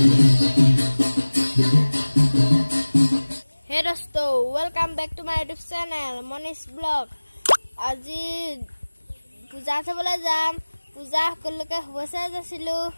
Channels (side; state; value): both; inverted; correlation -1.00